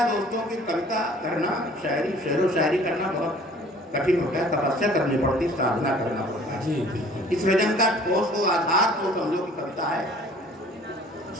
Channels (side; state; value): both; normal; correlation 0.51